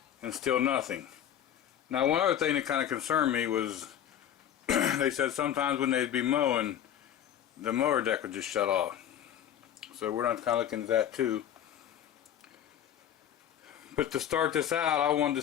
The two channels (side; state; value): right; quieter; 10.2 dB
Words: and still nothing. Now, one other thing that kind of concerned me was they said sometimes when they'd be mowing, the mower deck would just shut off. So we're not kind of looking at that too. But to start this out, I wanted to